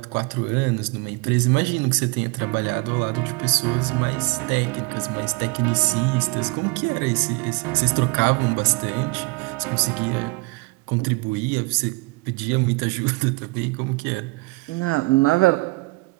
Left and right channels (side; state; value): left; quieter; 25.6 dB